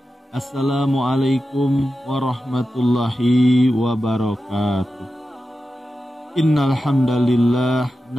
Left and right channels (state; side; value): normal; both; correlation 0.92